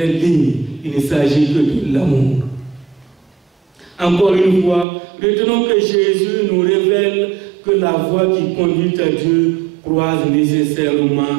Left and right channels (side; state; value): left; drops out; at 4.9 s